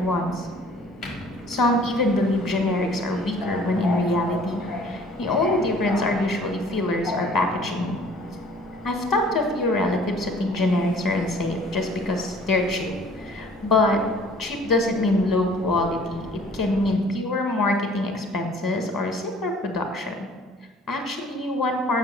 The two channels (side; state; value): both; normal; correlation 0.53